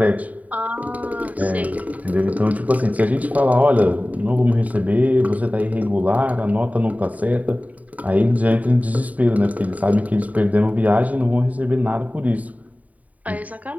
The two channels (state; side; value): late; left; 0.072 ms